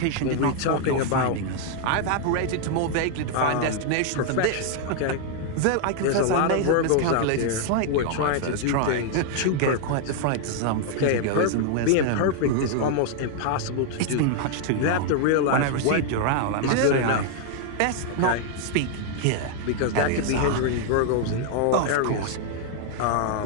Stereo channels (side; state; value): both; different; correlation 0.00